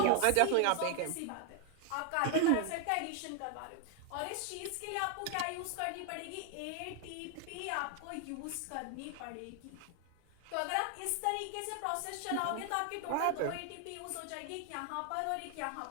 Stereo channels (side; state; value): both; different; correlation 0.00